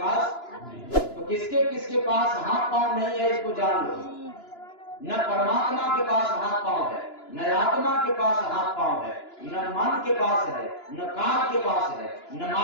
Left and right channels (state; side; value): late; right; 2.9 ms